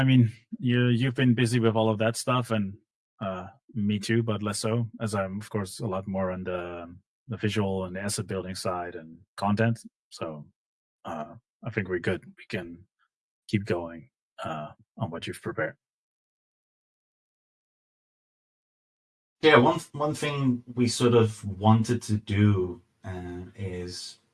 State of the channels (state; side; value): identical; both; correlation 1.00